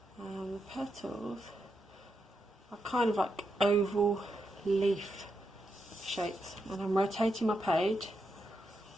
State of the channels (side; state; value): both; normal; correlation 0.84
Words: And the petals are kind of like oval leaf shapes. And I'm rotating my page